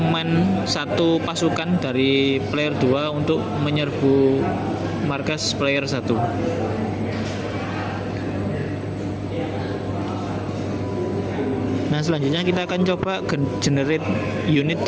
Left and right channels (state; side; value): identical; both; correlation 1.00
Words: satu pasukan dari player 2 untuk menyerbu markas player 1. Nah, selanjutnya kita akan coba generate unit